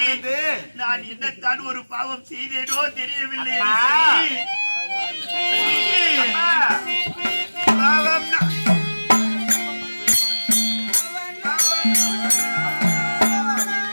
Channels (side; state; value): both; inverted; correlation -1.00